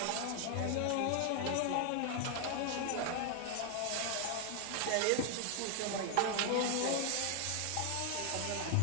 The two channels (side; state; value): both; different; correlation 0.00